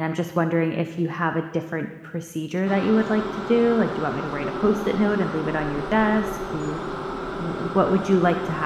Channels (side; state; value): both; identical; correlation 1.00